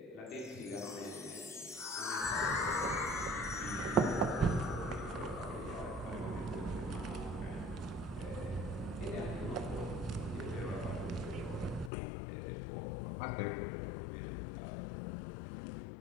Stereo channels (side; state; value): right; drops out; at 11.9 s